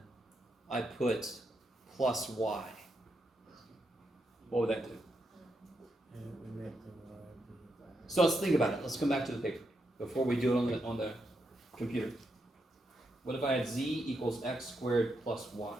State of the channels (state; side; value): normal; both; correlation 0.82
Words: I put plus y? What would that do? So let's think about it. Let's come back to the paper before we do it on the computer. What if I had z equals x squared plus y?